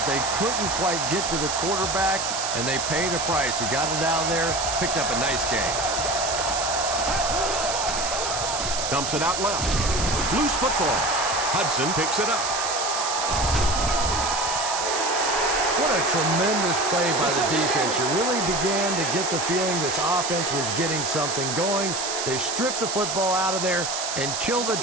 they couldn't quite get to the quarterback, and they paid a price. He got it out there, picked up a nice game. Dumps it out left. Loose football. Hudson picks it up. What a tremendous play by the defense. You really began to get the feeling this offense was getting something going. They stripped the football out of there and kill the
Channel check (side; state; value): right; noise; hiss, 3 dB below the sound